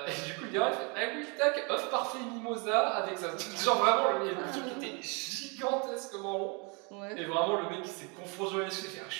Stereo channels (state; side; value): quieter; left; 32.4 dB